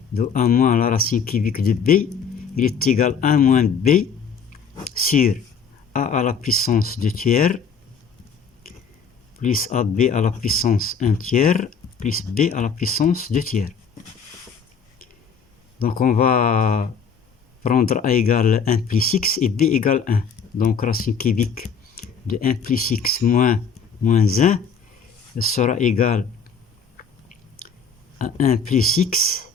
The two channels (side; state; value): right; quieter; 6.0 dB